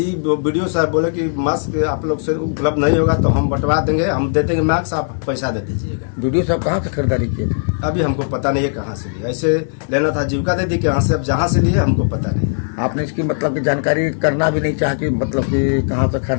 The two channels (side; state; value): right; silent; digital silence